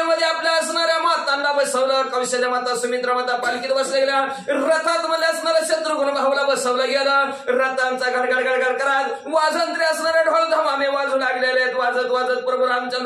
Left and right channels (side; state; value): both; identical; correlation 1.00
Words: आपल्या असणाऱ्या मातांना बसवलं, कौशल्य माता, सुमित्रा माता पालखीत बसल्या गेल्या. रथात मध्ये असणाऱ्या शत्रुघ्न भाऊला बसवलं गेलं. रथांचा गडगड गडगड करत वाजंत्री असणारे ढोल धमामे वाजू लागलेले आहेत. वाजत वाजत प्रभू